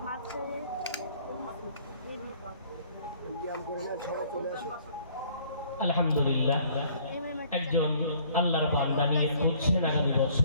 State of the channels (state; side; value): inverted; both; correlation -0.58